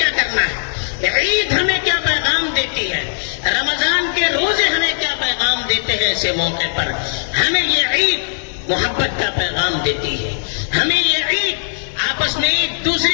کرنا ہے؟ عید ہمیں کیا پیغام دیتی ہے؟ رمضان کے روزے ہمیں کیا پیغام دیتے ہیں؟ ایسے موقع پر ہمیں یہ عید محبت کا پیغام دیتی ہے. ہمیں یہ عید آپس میں ایک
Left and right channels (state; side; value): silent; right; 67 dB below the other